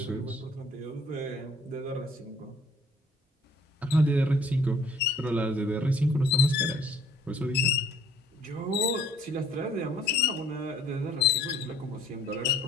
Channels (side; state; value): both; normal; correlation 0.59